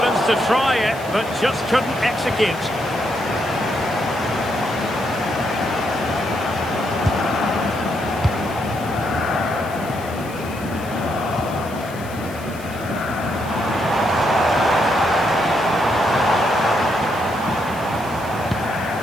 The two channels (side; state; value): left; noise; hiss, 19 dB below the sound